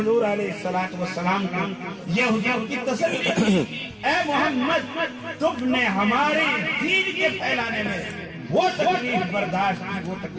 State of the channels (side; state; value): both; identical; correlation 1.00